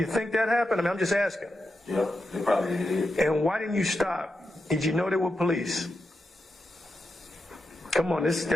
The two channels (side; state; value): both; normal; correlation 0.87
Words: think that happened? I mean, I'm just asking. Yeah, they probably did. And why didn't you stop? Did you know they were police? Come on,